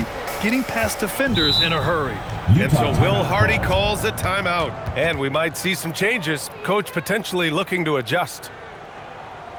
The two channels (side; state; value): both; identical; correlation 1.00